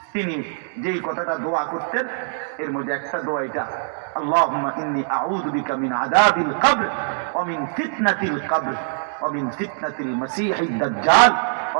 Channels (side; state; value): left; silent; digital silence